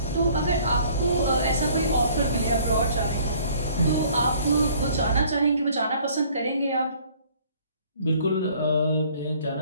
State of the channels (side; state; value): both; inverted; correlation -0.56